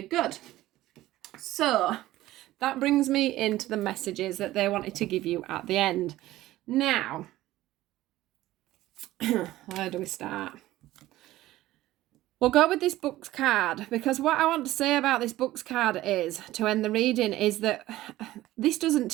good. So that brings me into the messages that they wanted to give you at the end. Now, where do we start? We'll go with this Books card, because what I want to say about this Books card is, to end the reading, is that this doesn't,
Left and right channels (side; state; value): left; quieter; 15.9 dB